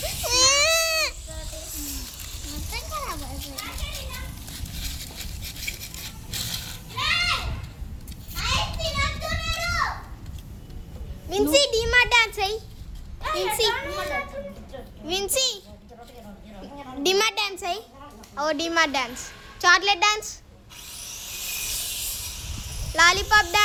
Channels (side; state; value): both; identical; correlation 1.00